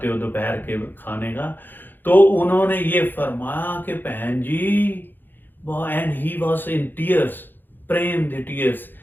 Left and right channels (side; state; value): right; late; 0.092 ms